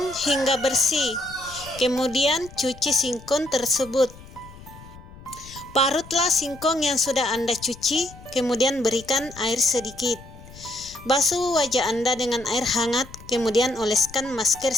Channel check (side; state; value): left; noise; rumble, 19 dB below the sound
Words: hingga bersih, kemudian cuci singkong tersebut. Parutlah singkong yang sudah Anda cuci, kemudian berikan air sedikit. Basuh wajah Anda dengan air hangat, kemudian oleskan masker